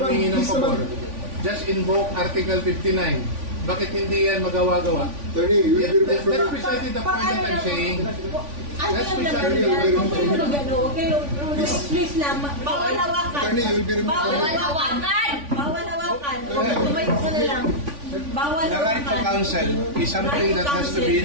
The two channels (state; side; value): late; left; 3.5 ms